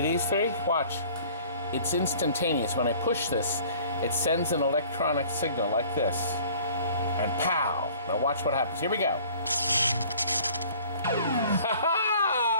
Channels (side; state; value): both; inverted; correlation -0.51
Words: 3? Watch. It's instantaneous. When I push this, it sends an electronic signal like this. And pow! Now watch what happens. Here we go.